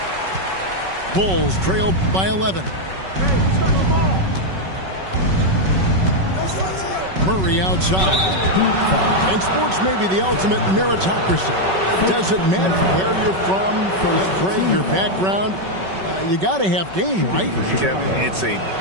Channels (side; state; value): left; late; 5.3 ms